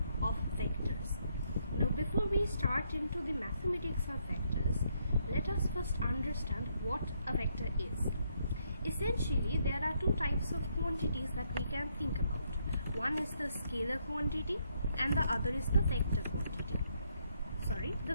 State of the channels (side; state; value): both; inverted; correlation -0.73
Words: of vectors. Now before we start into the mathematics of vectors, let us first understand what a vector is. Essentially there are two types of quantities that we can think about. One is the scalar quantity and the other is the vector quantity.